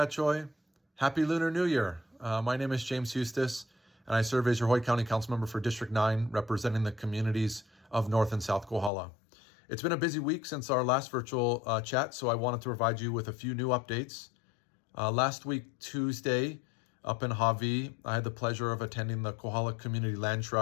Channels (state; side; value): drops out; right; at 8.9 s